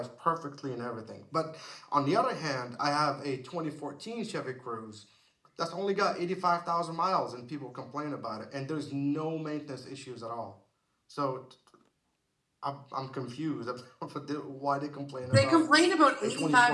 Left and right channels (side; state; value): both; identical; correlation 1.00